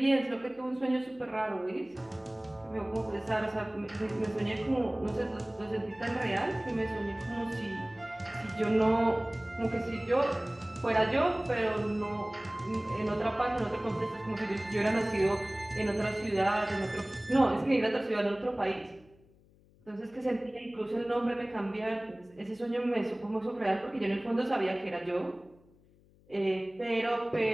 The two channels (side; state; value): left; noise; hum, 29 dB below the sound